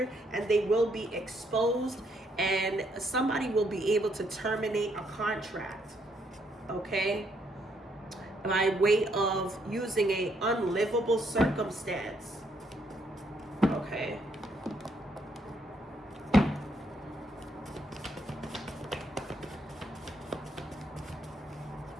and they will be exposed, and somebody will be able to terminate a contract, okay, by way of using a unlivable circumstance. Okay.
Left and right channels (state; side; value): normal; both; correlation 0.72